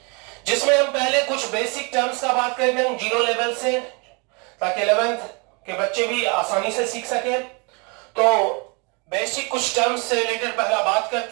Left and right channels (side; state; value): left; quieter; 31.6 dB